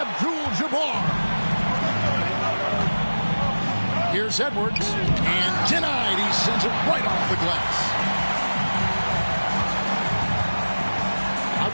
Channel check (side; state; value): both; inverted; correlation -1.00